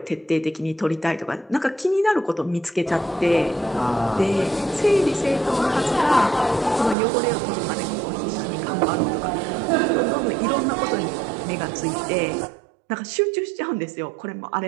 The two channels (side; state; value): left; drops out; at 7.0 s